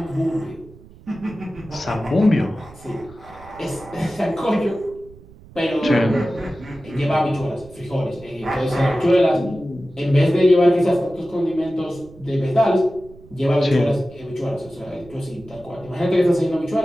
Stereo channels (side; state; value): right; noise; rumble, 22 dB below the sound